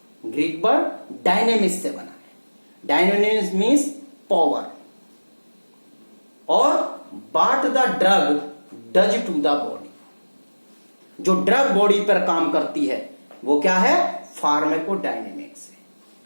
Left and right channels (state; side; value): inverted; both; correlation -1.00